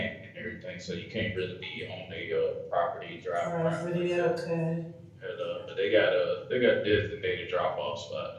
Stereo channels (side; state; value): both; identical; correlation 1.00